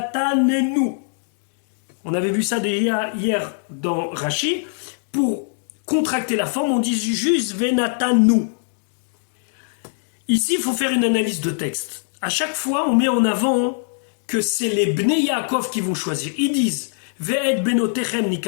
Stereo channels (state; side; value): silent; right; digital silence